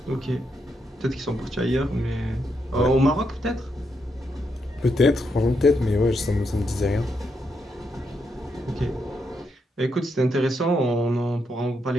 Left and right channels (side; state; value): both; normal; correlation 0.80